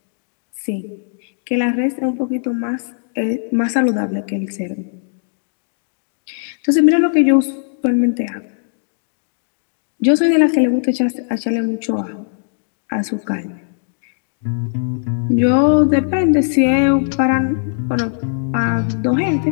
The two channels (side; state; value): right; silent; digital silence